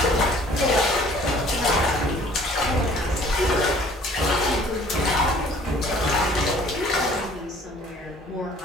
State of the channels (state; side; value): normal; both; correlation 0.54